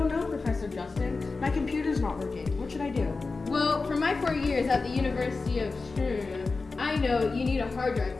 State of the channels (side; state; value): right; quieter; 4.0 dB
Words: know, Professor Justin. My computer's not working. What should I do? Well, for my 4 years at the University of I know you need a hard drive